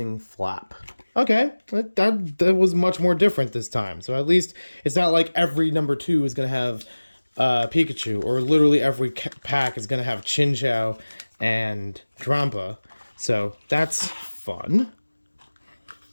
Flap. Okay, that was much more different this time. So at least it's not like every number 2 is going to have Pikachu, or literally every pack is going to have Chinchou and Drampa. So that's fun.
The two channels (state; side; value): inverted; both; correlation -1.00